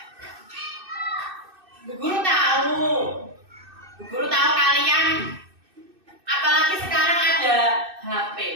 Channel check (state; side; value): late; left; 2.6 ms